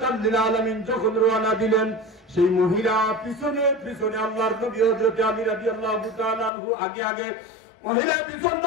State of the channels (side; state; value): right; drops out; at 6.5 s